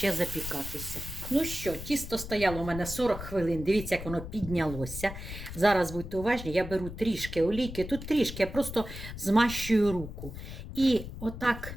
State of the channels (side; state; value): left; noise; rumble, 10 dB below the sound